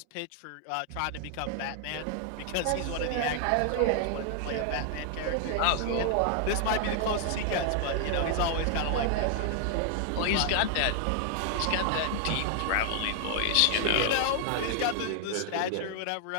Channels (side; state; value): both; different; correlation 0.00